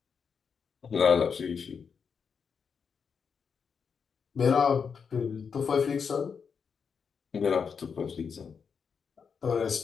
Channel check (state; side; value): quieter; right; 6.2 dB